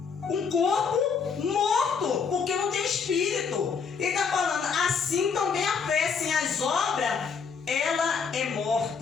Um corpo morto, porque não tem espírito. Ele está falando, assim também a fé sem as obras, ela é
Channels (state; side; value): quieter; right; 5.8 dB